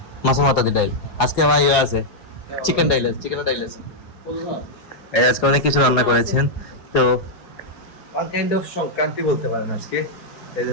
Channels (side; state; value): right; late; 4.8 ms